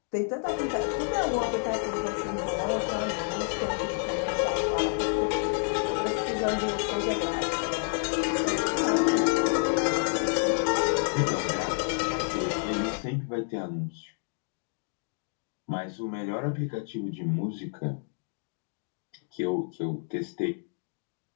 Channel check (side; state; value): right; silent; 58 dB below the other